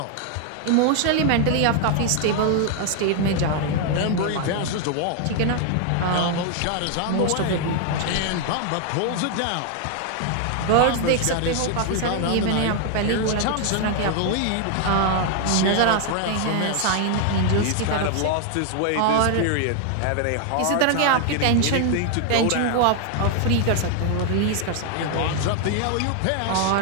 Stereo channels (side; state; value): both; different; correlation 0.00